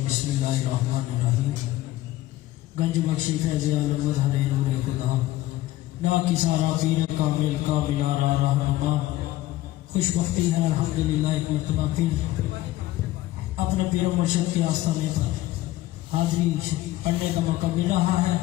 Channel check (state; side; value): quieter; right; 16.0 dB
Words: बिस्मिल्लाहिर्रहमानिर्रहीम। गंज बख्शी फैज़ आलम मज़हरे नूर इक़्तिदा ना किसारा पीर कामिल का मिलारा रहनुमा। खुशबख्ती है अल्हम्दुलिल्लाह एक मरतबा फिर अपने पीर मुर्शिद के आस्थाने पर हाज़री पढ़ने का मौका मिल रहा है।